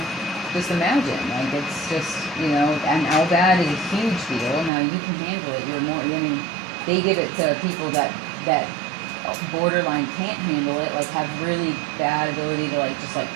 just imagine, like it's just, you know, and L-Vad is a huge deal. Now you can handle it. You're more, I mean, they give it to people that borderline can't handle it, like have really bad ability to like just like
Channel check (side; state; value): left; drops out; at 4.7 s